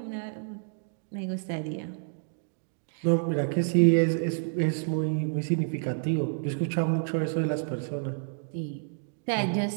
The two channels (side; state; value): left; silent; digital silence